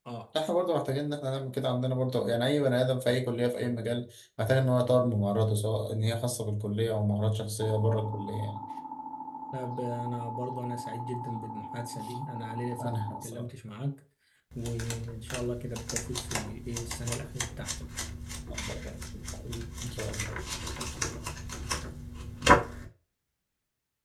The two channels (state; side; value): identical; both; correlation 1.00